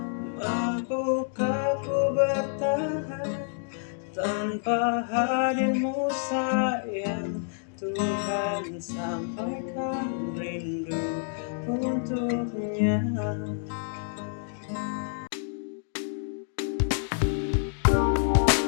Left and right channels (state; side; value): silent; right; digital silence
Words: Mampukah ku bertahan tanpa hadirmu sayang? Tuhan sampaikan rindu untuknya.